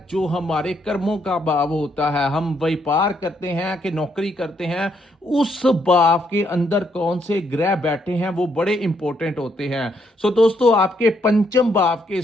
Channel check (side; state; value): both; normal; correlation 0.74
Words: जो हमारे कर्मों का भाव होता है। हम व्यापार करते हैं कि नौकरी करते हैं, उस भाव के अंदर कौन से ग्रह बैठे हैं वो बड़े इंपॉर्टेंट होते हैं। सो दोस्तों आपके पंचम भाव के